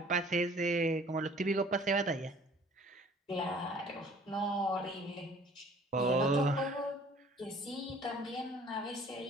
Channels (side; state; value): both; normal; correlation 0.53